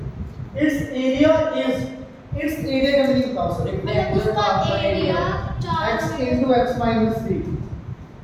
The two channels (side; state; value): both; identical; correlation 1.00